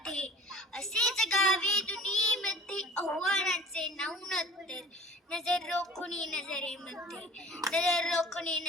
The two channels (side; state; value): both; normal; correlation 0.44